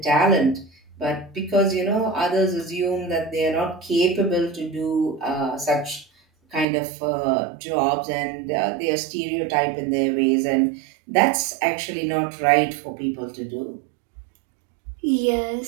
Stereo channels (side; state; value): left; drops out; at 6.7 s